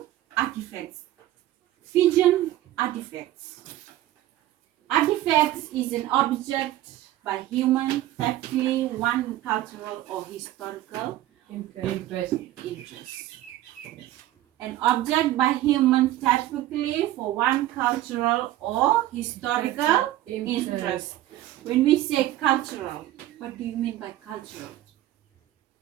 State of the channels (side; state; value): left; quieter; 14.6 dB